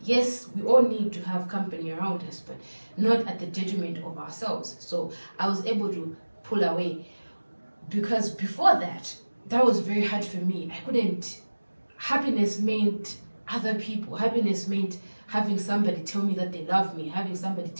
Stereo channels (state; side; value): inverted; both; correlation -1.00